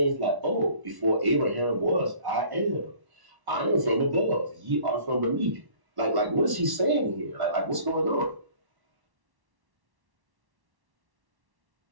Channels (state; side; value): late; left; 1.1 ms